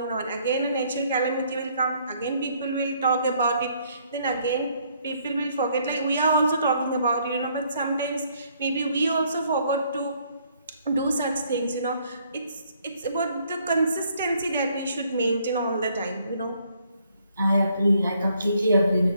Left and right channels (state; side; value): inverted; both; correlation -0.67